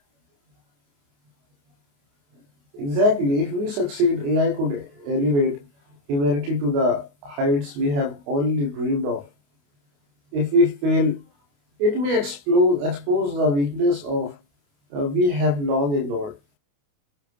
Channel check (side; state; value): left; late; 28 ms